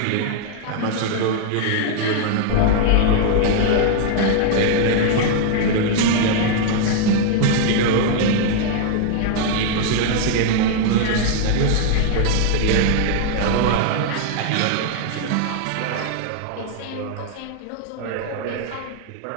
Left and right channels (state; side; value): different; both; correlation 0.00